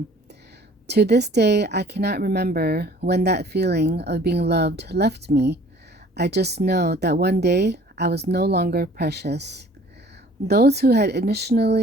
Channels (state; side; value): normal; both; correlation 0.52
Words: To this day, I cannot remember when that feeling of being loved left me. I just know that one day I was no longer precious. Those who had